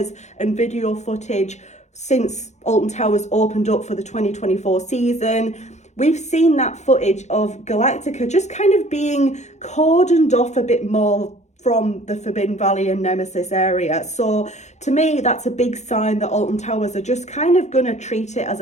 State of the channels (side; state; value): right; late; 0.33 ms